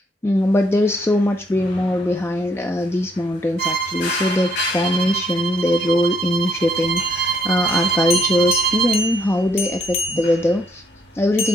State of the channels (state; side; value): normal; both; correlation 0.70